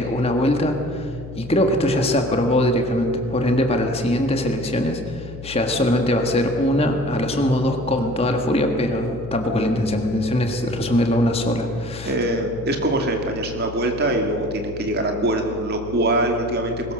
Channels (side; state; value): left; noise; hum, 14 dB below the sound